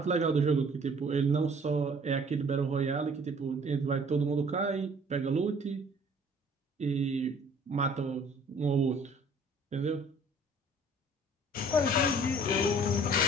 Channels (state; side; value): normal; both; correlation 0.54